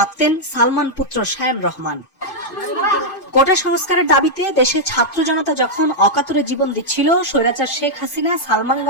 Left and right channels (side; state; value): right; late; 2.5 ms